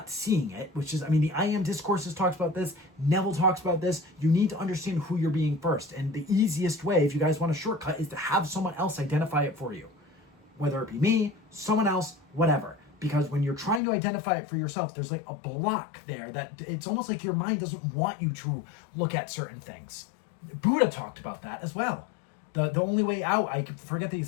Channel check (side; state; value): right; drops out; at 13.8 s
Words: seeing it, which is, I mean, the I Am Discourses talks about this, Neville talks about this. You need to understand who you're being first. And the easiest way, if you guys want a shortcut, is to have someone else identify it for you. Whether it be me, someone else, whatever. Because when you're trying to identify it for yourself, there's like a block there that it's almost like your mind doesn't want you to look at certain things. Buddha talked about that as well. The only way out, I forget the